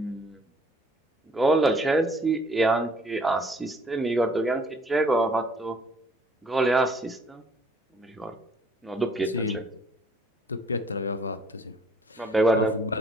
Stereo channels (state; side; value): normal; both; correlation 0.61